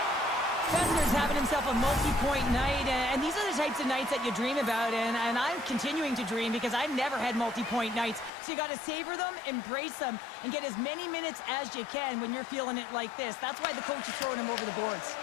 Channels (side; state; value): right; drops out; at 8.3 s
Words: Kessler's having himself a multi-point night, and these are the types of nights that you dream about, and I'm continuing to dream because I've never had multi-point nights. So you got to savor them, embrace them, and get as many minutes as you can when you're feeling it like this. That's why the coach is throwing him over the boards.